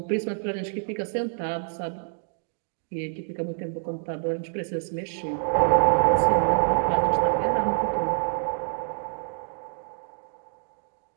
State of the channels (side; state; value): left; silent; digital silence